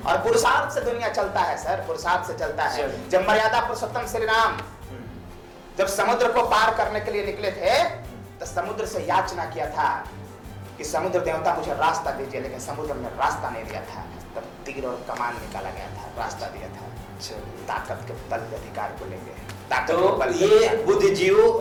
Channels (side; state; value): both; identical; correlation 1.00